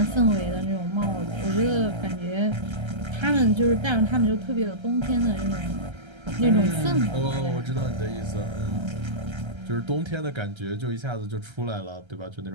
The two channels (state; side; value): late; left; 1.3 ms